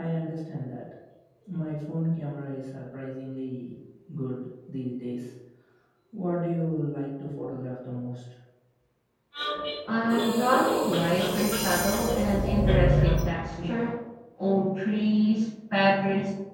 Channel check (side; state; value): both; identical; correlation 1.00